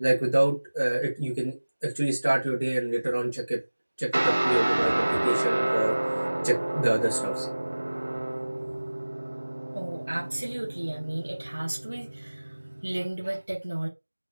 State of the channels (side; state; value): both; inverted; correlation -1.00